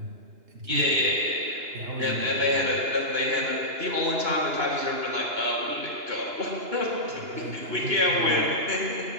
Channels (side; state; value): left; late; 2.9 ms